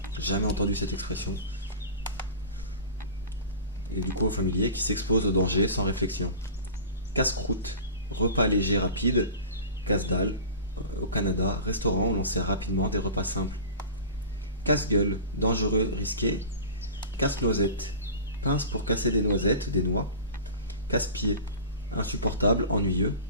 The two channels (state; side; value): inverted; both; correlation -0.35